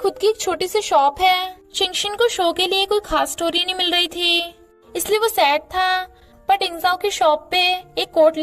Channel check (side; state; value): both; identical; correlation 1.00